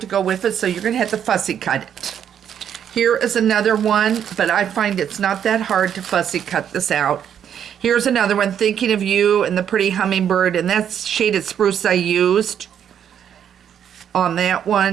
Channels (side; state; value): left; quieter; 9.0 dB